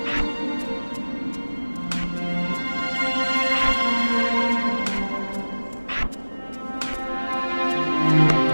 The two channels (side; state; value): both; inverted; correlation -1.00